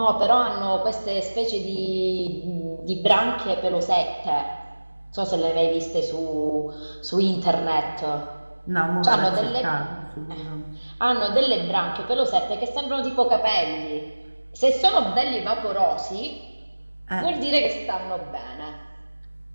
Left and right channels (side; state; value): both; inverted; correlation -1.00